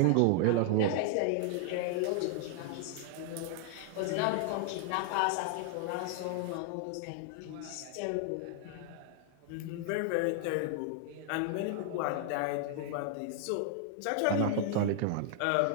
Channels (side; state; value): both; different; correlation -0.01